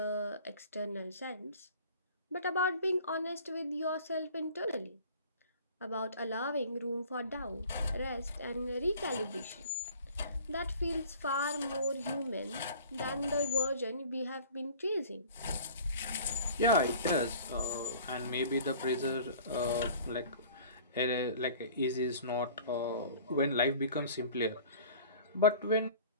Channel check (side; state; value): both; inverted; correlation -0.46